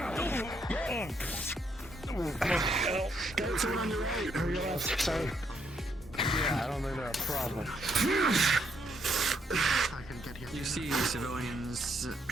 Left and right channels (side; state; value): both; normal; correlation 0.74